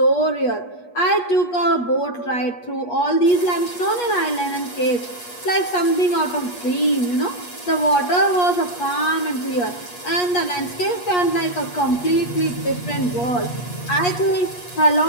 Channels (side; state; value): right; late; 8.3 ms